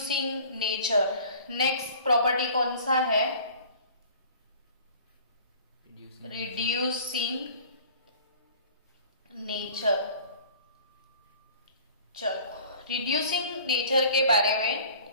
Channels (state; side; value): inverted; both; correlation -0.47